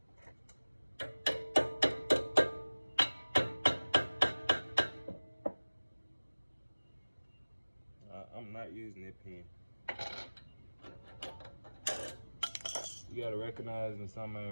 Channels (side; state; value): both; inverted; correlation -1.00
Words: I'm not using that pin. You gotta recognize when something